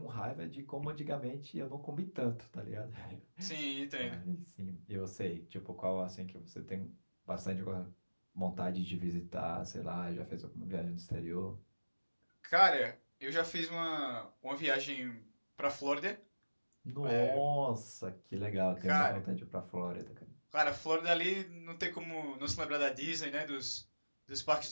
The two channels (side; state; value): both; inverted; correlation -1.00